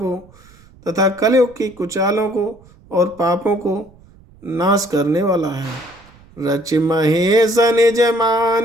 तथा कलयुग की कुचालों को और पापों को नाश करने वाला है। रच महेश निज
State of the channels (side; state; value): right; noise; rumble, 26 dB below the sound